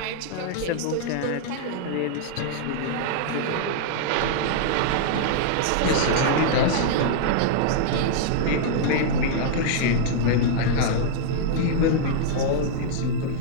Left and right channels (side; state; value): both; different; correlation -0.01